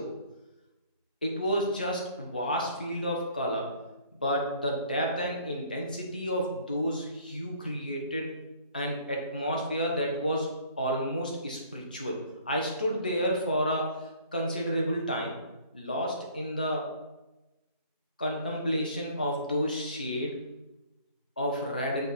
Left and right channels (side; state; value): both; inverted; correlation -0.54